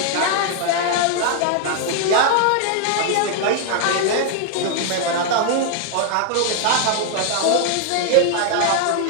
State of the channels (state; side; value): different; both; correlation 0.00